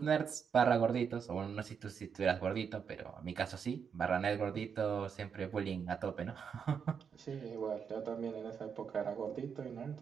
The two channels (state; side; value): quieter; left; 6.8 dB